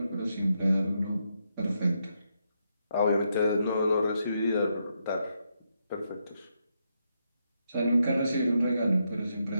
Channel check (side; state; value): both; inverted; correlation -0.81